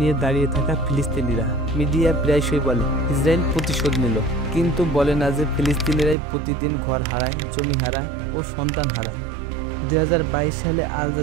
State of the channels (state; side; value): drops out; left; at 6.2 s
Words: নিয়ে দাঁড়িয়ে থাকা ফিলিস্তিনিরা। মিডিয়া প্রায়শই বলে ইসরায়েল প্রতিশোধ নিল, কিন্তু বলে না যে ফিলিস্তিনিরাই প্রতিদিন ঘর হারায়, জমি হারায় ও সন্তান হারায়। 2022 সালে আল